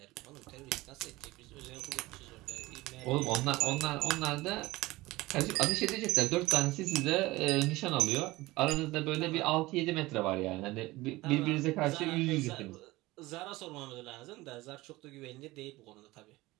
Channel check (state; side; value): quieter; left; 19.7 dB